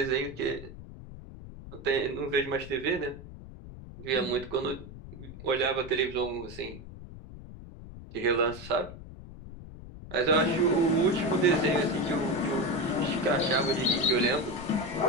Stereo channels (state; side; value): noise; left; rumble, 14 dB below the sound